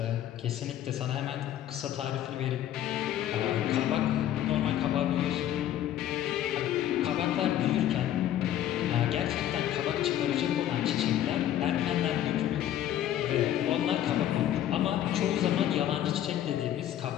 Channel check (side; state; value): right; quieter; 11.8 dB